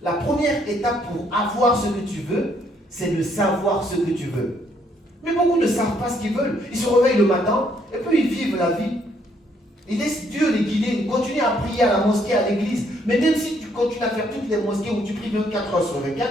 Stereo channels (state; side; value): normal; both; correlation 0.69